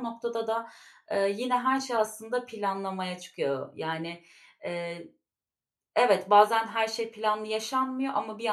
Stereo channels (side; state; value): both; identical; correlation 1.00